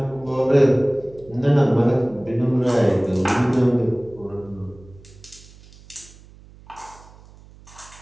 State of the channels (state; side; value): noise; right; hum, 23 dB below the sound